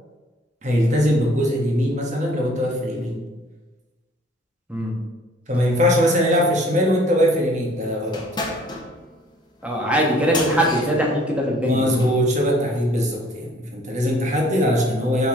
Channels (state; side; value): normal; both; correlation 0.56